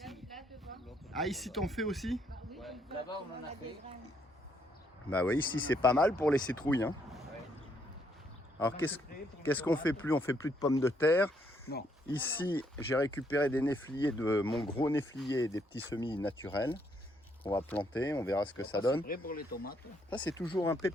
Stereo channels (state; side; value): normal; both; correlation 0.72